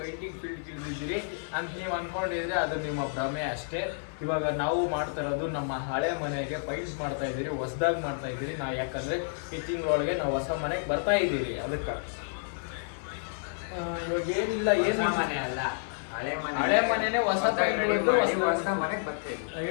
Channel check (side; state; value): right; silent; digital silence